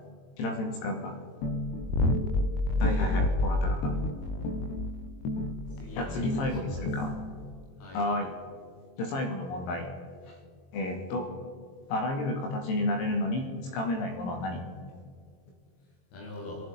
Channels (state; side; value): late; right; 22 ms